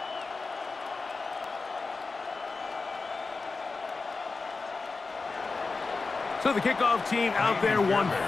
So the kickoff team out there one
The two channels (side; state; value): right; quieter; 4.1 dB